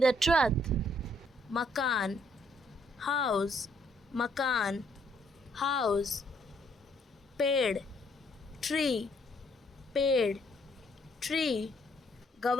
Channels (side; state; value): both; normal; correlation 0.69